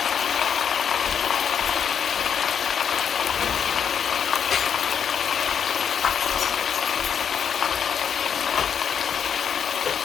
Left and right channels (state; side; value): quieter; right; 7.7 dB